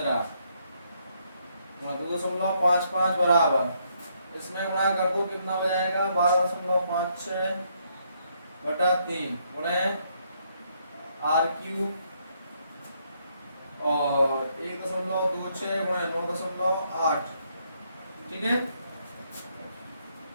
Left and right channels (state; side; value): inverted; both; correlation -0.73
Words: गुणा 2.55 बराबर, इसमें गुणा कर दो कितना हो जाएगा 12.56 बटा 3 गुणे आर क्यूब और 1.26 गुणे 9.8, ठीक है।